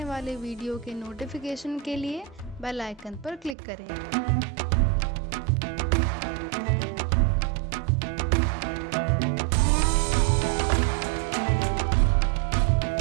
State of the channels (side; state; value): left; drops out; at 3.6 s